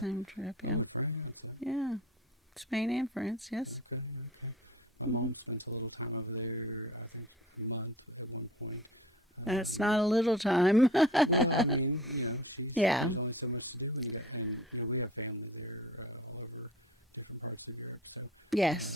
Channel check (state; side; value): normal; both; correlation 0.41